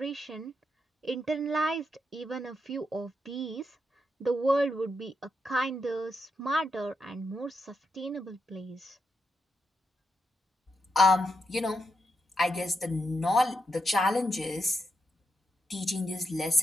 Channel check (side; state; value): both; normal; correlation 0.83